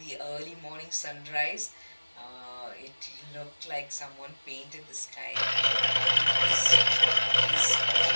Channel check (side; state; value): both; inverted; correlation -1.00